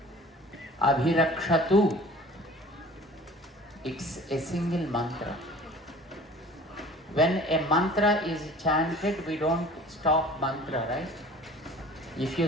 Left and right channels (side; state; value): both; normal; correlation 0.46